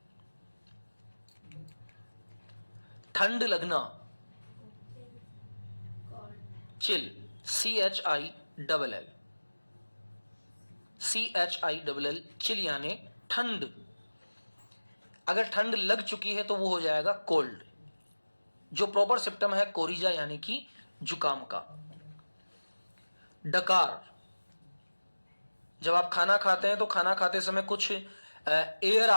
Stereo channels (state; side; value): inverted; both; correlation -1.00